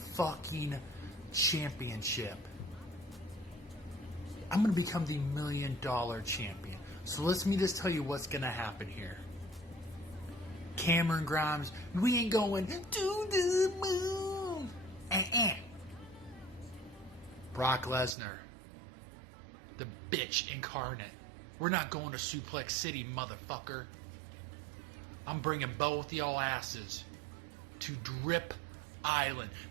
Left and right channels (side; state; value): left; drops out; at 18.2 s